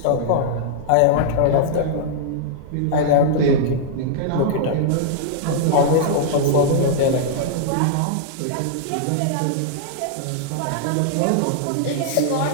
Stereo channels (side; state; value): both; different; correlation -0.01